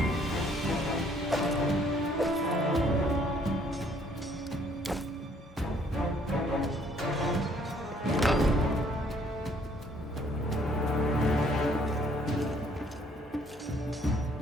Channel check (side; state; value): both; normal; correlation 0.63